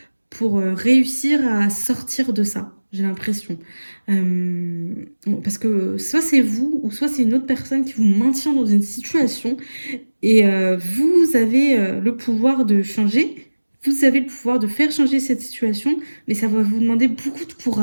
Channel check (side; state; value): both; inverted; correlation -1.00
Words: réussir à sortir de ça, j'ai l'impression. Parce que soit c'est vous ou soit c'est une autre personne qui vous maintient dans une situation et vous avez le pouvoir de changer. Vous avez le pouvoir de faire changer cette situation, mais ça va vous demander beaucoup de